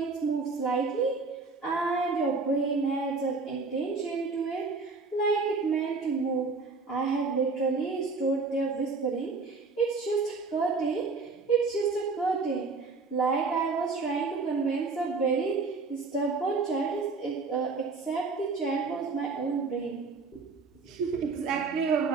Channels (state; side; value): quieter; left; 4.3 dB